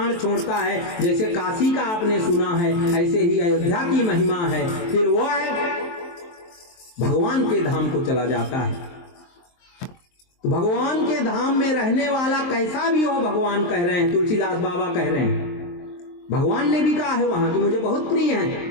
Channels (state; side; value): late; right; 23 ms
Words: छोड़ता है, जैसे काशी का आपने सुना है, ऐसे ही अयोध्या की महिमा है। फिर वो भगवान के धाम को चला जाता है। तो भगवान के धाम में रहने वाला कैसा भी हो, भगवान कह रहे हैं, तुलसीदास बाबा कह रहे हैं। भगवान ने भी कहा है वहां कि मुझे बहुत प्रिय